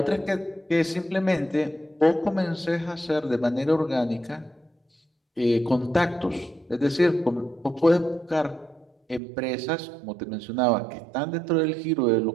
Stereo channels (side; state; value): left; drops out; at 9.2 s